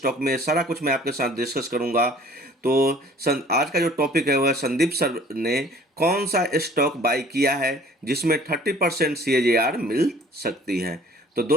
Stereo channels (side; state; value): both; normal; correlation 0.52